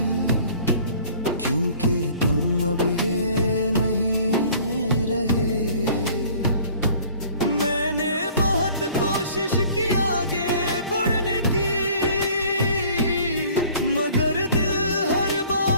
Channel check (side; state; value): both; inverted; correlation -0.52